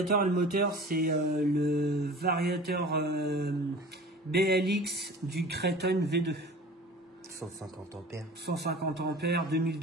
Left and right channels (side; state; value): both; normal; correlation 0.41